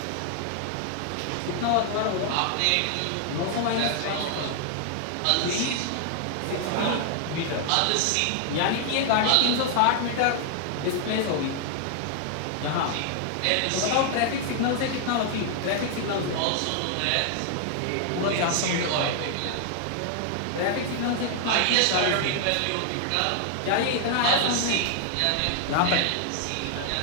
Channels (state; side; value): different; both; correlation 0.00